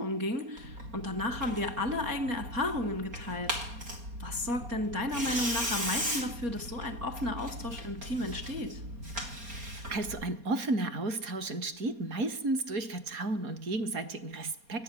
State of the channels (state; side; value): late; left; 4.2 ms